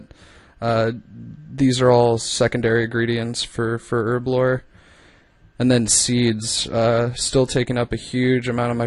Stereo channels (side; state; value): both; identical; correlation 1.00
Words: These are all secondary ingredients for herb lore. And then seeds, still taking up a huge amount of my